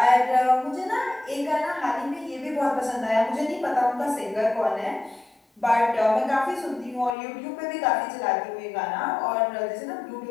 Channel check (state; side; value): drops out; right; at 7.2 s